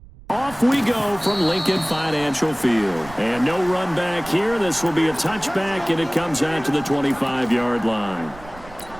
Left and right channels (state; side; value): noise; right; rumble, 19 dB below the sound